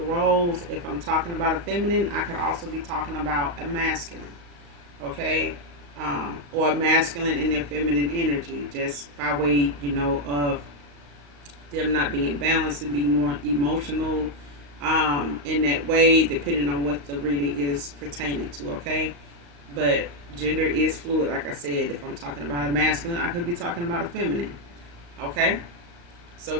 roles. If I'm talking about a feminine, I could also be talking about a masculine, okay, or a masculine in their feminine energy, just by way, of them not being balanced and being more emotional in that way, depending on what the reading is pertaining to, okay. But gender is fluid, like I said. If I'm talking about a masculine, I could be talking about a feminine. Okay, so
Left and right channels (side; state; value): left; late; 35 ms